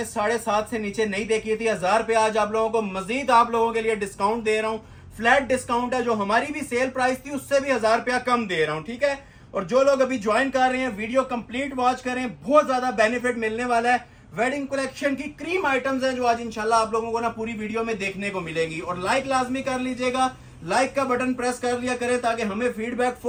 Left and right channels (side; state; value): both; identical; correlation 1.00